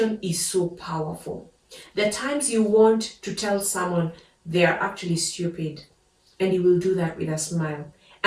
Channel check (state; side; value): identical; both; correlation 1.00